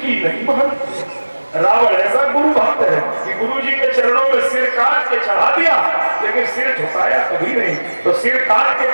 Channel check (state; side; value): inverted; both; correlation -1.00